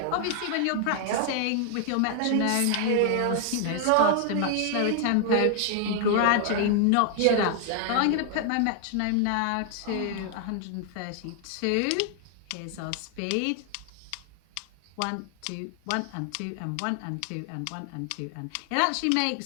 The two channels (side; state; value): both; different; correlation 0.00